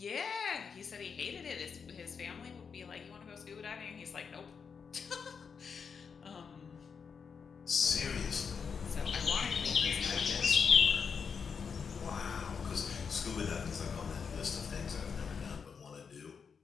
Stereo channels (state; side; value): quieter; right; 6.1 dB